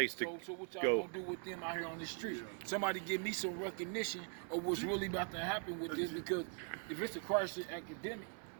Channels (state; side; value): quieter; left; 39.9 dB